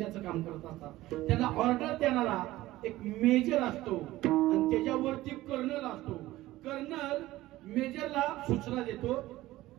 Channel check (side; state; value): left; quieter; 16.8 dB